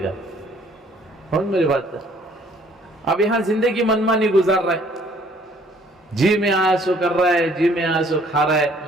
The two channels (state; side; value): normal; both; correlation 0.60